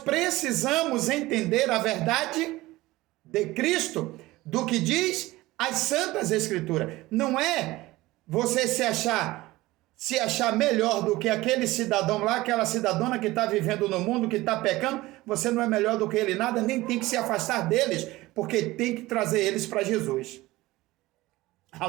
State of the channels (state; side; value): quieter; left; 18.8 dB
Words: entender a verdade de Cristo, do que diz as Santas Escrituras. Não é você se achar melhor do que aquele cidadão lá, aquela cidadã que está vivendo no mundo, que está pecando. Você não é melhor do que ele nada, nem tem que se afastar deles, porque tem que trazer eles para Jesus.